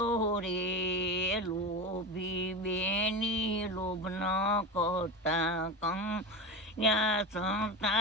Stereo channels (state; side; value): normal; both; correlation 0.24